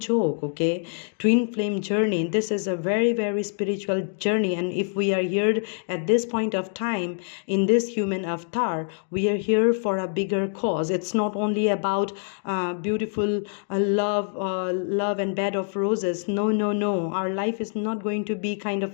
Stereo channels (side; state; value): right; silent; 62 dB below the other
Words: okay? Twin flame journey, this is a very, very spiritual journey. And if we are here at this point of time in this human avatar, we are here for a bigger cause. It's not only about beautiful love and bed of roses. No, our life is not going to be kind